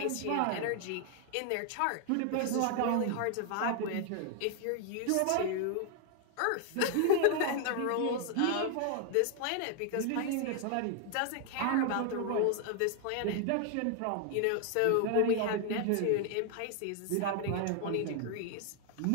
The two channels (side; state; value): both; different; correlation 0.00